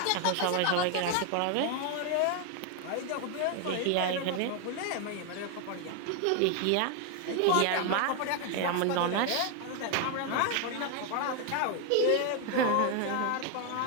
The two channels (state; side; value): different; both; correlation 0.01